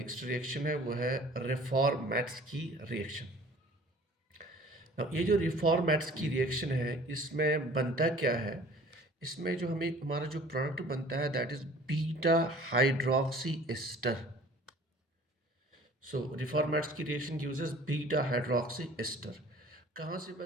रिएक्शन है वो है रिफॉर्मेट्स की रिएक्शन। ये जो रिफॉर्मेट्स की रिएक्शन है इसमें बनता क्या है, इसमें जो हमारा जो प्रोडक्ट बनता है that is beta hydroxy ester. So रिफॉर्मेट्स की reaction uses beta hydroxy ester. कहाँ से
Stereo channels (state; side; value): normal; both; correlation 0.49